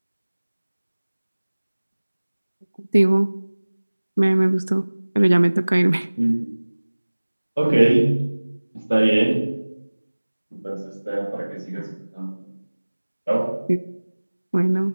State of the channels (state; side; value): inverted; both; correlation -1.00